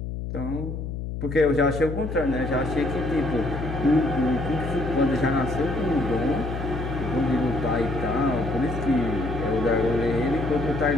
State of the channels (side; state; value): left; noise; hum, 5 dB below the sound